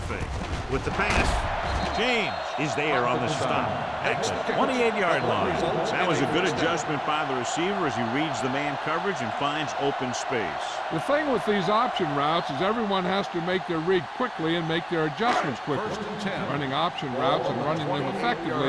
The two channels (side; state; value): both; identical; correlation 1.00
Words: With the pass, James is there on the stop at the 28-yard line. That was a good adjustment by the receiver as he reads the man coverage and finds open space. The thing with these option routes is everyone has to make their read quickly and make their adjustments quickly. Running option routes and running them